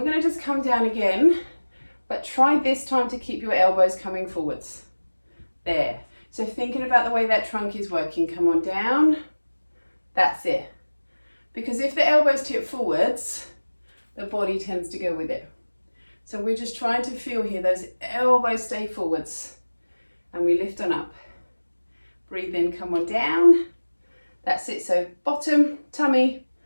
going to just come down again, but try this time to keep your elbows coming forwards. There. So thinking about the way that trunk is working, come on down, that's it. Because if the elbows tip forwards, the body tends to go with it. So we're just trying to feel here, those elbows stay forwards, and we lift on up. Breathe in, come on down. That's it, so bottom, tummy,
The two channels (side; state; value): both; inverted; correlation -1.00